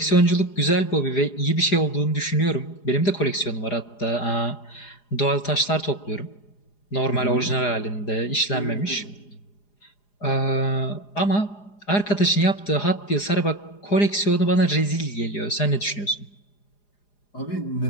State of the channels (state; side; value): late; right; 4.9 ms